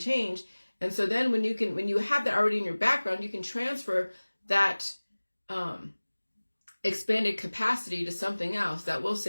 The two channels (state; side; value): inverted; both; correlation -1.00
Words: change, And so then when you have that already in your background, you can transfer that expanded capacity to something else that will